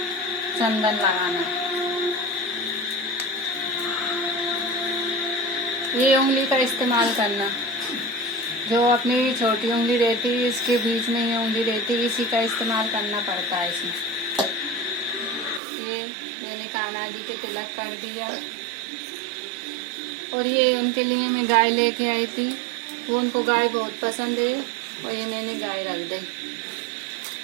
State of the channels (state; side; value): drops out; left; at 15.6 s